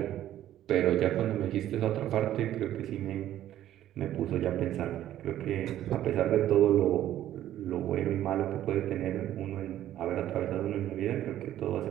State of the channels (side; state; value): left; quieter; 12.5 dB